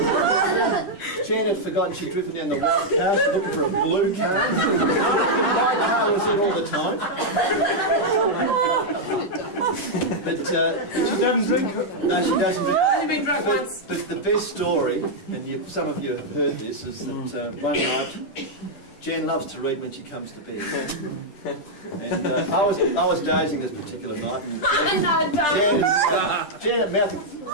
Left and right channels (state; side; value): late; right; 10 ms